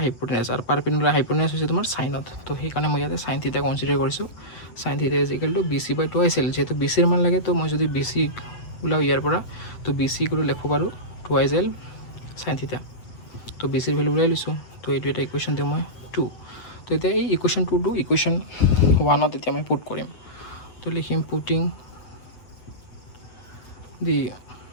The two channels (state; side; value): late; right; 8.5 ms